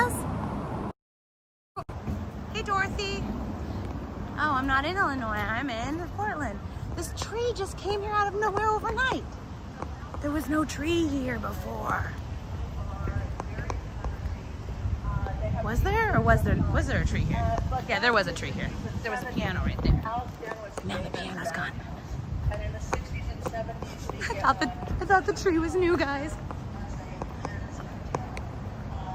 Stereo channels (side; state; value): both; identical; correlation 1.00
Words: Hey, Dorothy. Oh, I'm not in Illinois. I'm in Portland. This tree just came here out of nowhere overnight. There was no tree here before. Was there? Or was there a tree here? Yeah, there was a tree here. There was a piano right there. Man, the piano's gone. I thought the tree was new, guys.